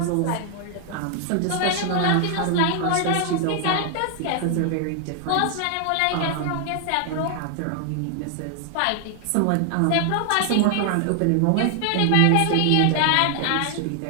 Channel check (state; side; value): different; both; correlation 0.00